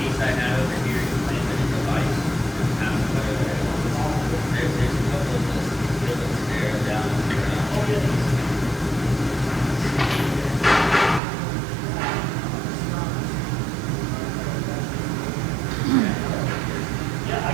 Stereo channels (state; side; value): drops out; left; at 11.2 s